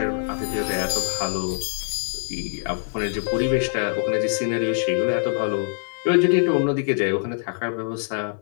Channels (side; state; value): right; silent; 63 dB below the other